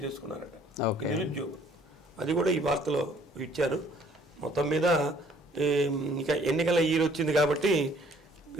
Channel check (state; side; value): normal; both; correlation 0.58